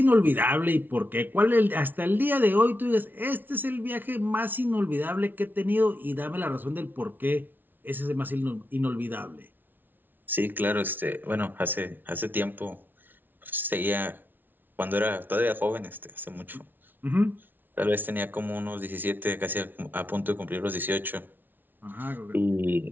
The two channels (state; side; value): late; left; 0.090 ms